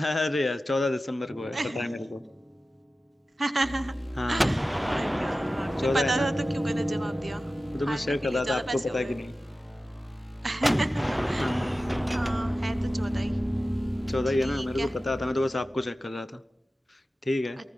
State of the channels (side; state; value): both; normal; correlation 0.95